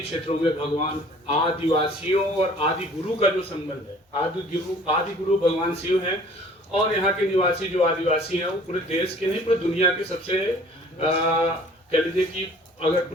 क्षेत्रों में भगवान आदिवासियों और आदि गुरु का जो संबंध है, आदि गुरु भगवान शिव हैं और यहाँ के निवासी जो आदिवासी हैं वो पूरे देश के नहीं पूरे दुनिया के सबसे कह लीजिए कि अगर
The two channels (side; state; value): both; normal; correlation 0.51